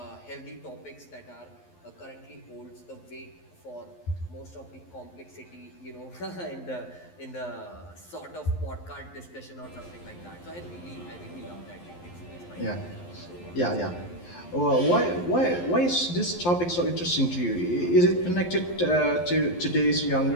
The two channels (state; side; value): late; right; 11 ms